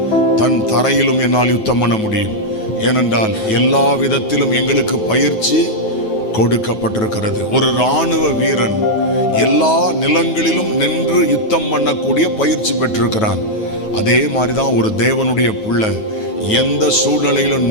தன் தரையிலும் என்னால் யுத்தம் பண்ண முடியும். ஏனென்றால் எல்லா விதத்திலும் எங்களுக்கு பயிற்சி கொடுக்கப்பட்டிருக்கிறது. ஒரு இராணுவ வீரன் எல்லா நிலங்களிலும் நின்று யுத்தம் பண்ணக்கூடிய பயிற்சி பெற்றிருக்கிறான். அதே மாதிரிதான் ஒரு தேவனுடைய பிள்ளை எந்த சூழ்நிலையிலும்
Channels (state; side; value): late; right; 9.3 ms